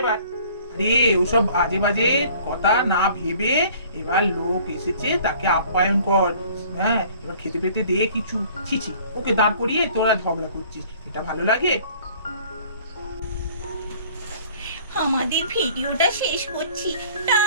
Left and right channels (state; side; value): inverted; both; correlation -0.53